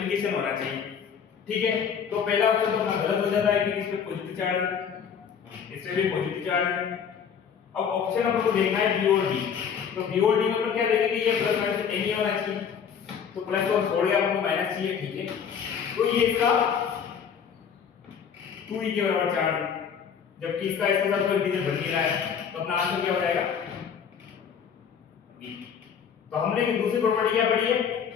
होना चाहिए, ठीक है। तो पहला ऑप्शन तो अपना गलत हो जाता है कि इसमें पॉजिटिव चार्ज है, इसमें भी पॉजिटिव चार्ज है। अब ऑप्शन अपन को देखना है बी और डी, तो बी और डी में अपन क्या देखेंगे, ये प्लस माइनस नहीं होना चाहिए, तो प्लस को छोड़ के अपन को माइनस चाहिए, ठीक है। तो ये इसका 2e के बराबर चार्ज है, जबकि इसका इसके साथ कोई इंटीजर बन नहीं रहा है, तो अपना आंसर क्या हो जाएगा बी। तो हमने एक दूसरी प्रॉपर्टी क्या पढ़ी है,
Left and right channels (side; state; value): right; quieter; 7.3 dB